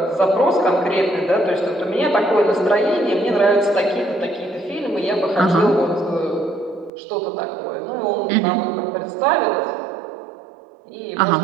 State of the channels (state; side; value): drops out; left; at 6.9 s